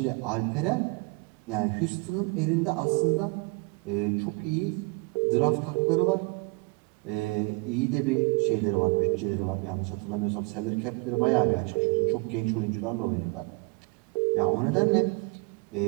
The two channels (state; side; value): quieter; left; 29.9 dB